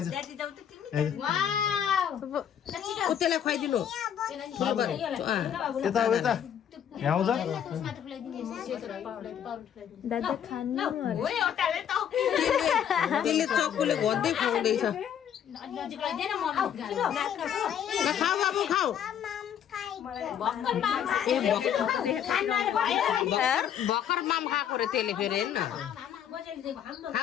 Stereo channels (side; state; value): right; quieter; 9.2 dB